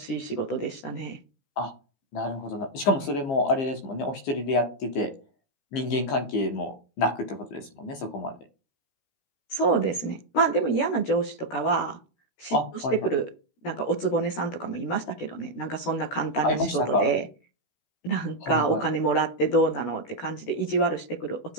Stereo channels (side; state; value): right; late; 15 ms